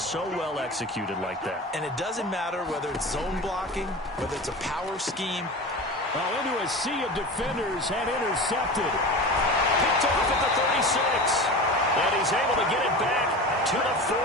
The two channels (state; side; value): normal; both; correlation 0.31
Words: well executed like that. And it doesn't matter whether it's zone blocking, whether it's a power scheme. Well, into a sea of defenders and intercepted. Picked off at the 36. And he's able to get it back to the